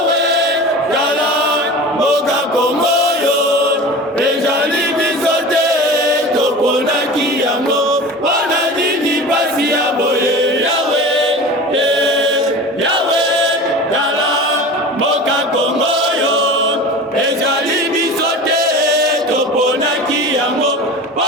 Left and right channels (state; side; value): normal; both; correlation 0.35